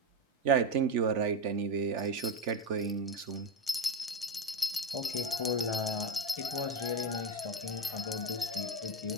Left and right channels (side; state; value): both; normal; correlation 0.14